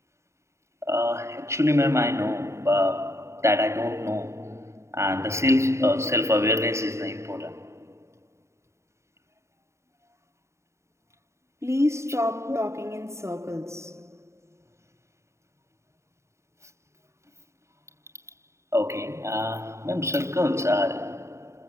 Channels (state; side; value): late; left; 0.14 ms